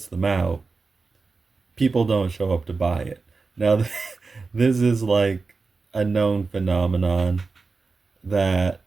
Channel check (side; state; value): left; quieter; 4.3 dB